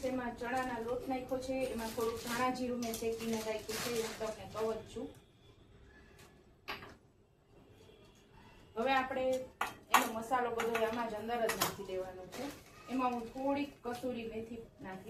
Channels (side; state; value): both; identical; correlation 1.00